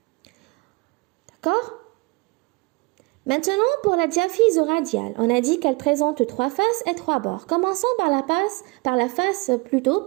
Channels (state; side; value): quieter; left; 27.3 dB